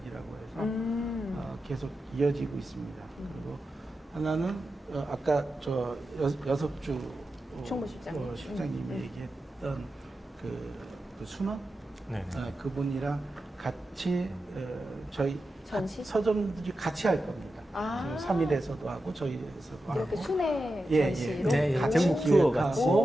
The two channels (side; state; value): both; normal; correlation 0.91